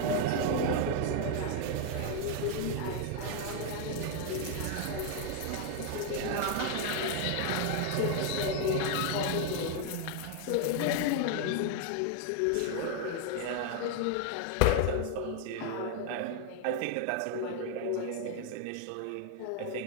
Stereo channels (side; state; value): both; different; correlation 0.01